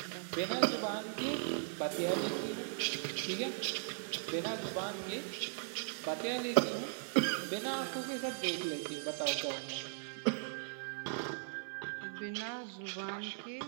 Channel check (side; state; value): left; silent; 52 dB below the other